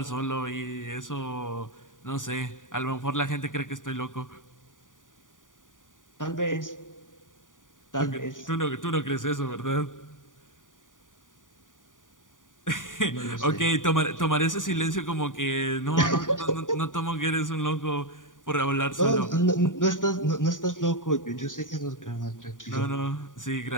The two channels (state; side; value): late; right; 0.88 ms